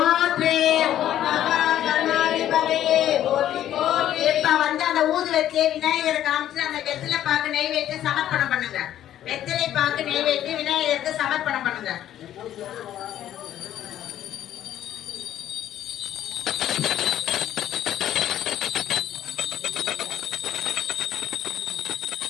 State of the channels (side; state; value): right; quieter; 11.8 dB